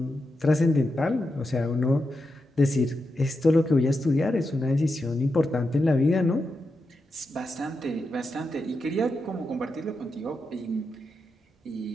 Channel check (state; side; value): normal; both; correlation 0.87